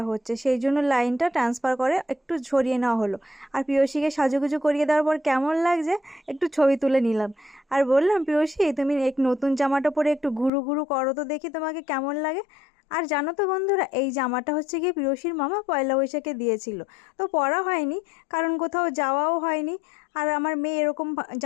হচ্ছে, সেই জন্য লাইনটা ট্রান্সফার করে একটু সরিয়ে নেওয়া হলো। আর পিয়সীকে সাজুগুজু করিয়ে দেওয়ার পর কেমন লাগছে একটু ছবি তুলে নিলাম। আর বললাম, পিয়সী তুমি এক নতুন জামাটা পরে একটু ঘুরু ঘুরু করো তো দেখি তোমাকে কেমন লাগে। আর জানো তো বন্ধুরা, এই জামাটা হচ্ছে গিয়ে পিয়সীর মামা পয়লা বৈশাখে দিয়েছিল। তো পরা হয়নি, কারণ কোথাও যাওয়াও হয়নি। আর আমার মেয়ে এরকম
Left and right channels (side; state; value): right; drops out; at 10.5 s